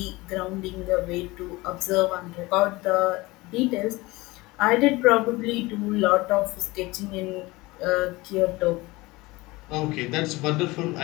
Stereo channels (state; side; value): quieter; right; 21.6 dB